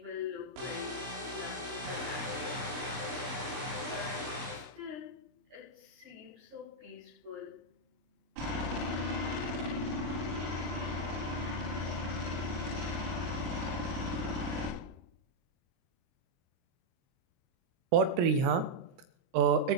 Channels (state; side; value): late; left; 23 ms